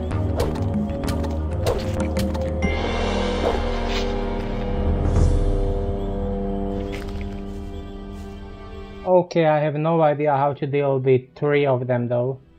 Okay, I have no idea how to deal with 3 of them though.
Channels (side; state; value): both; identical; correlation 1.00